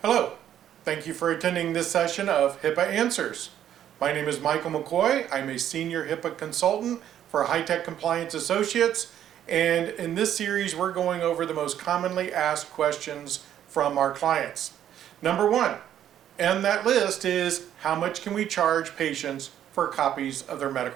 Hello, thank you for attending this session of HIPAA Answers. My name is Michael McCoy. I'm a senior HIPAA consultant for High-Tech Compliance Associates, and in this series we're going over the most commonly asked questions from our clients. Number one on that list is, how much can we charge patients for copies of their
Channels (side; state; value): left; quieter; 10.7 dB